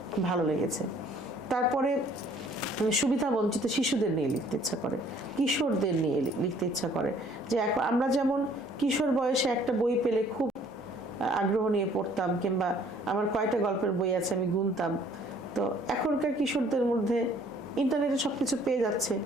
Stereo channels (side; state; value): both; normal; correlation 0.58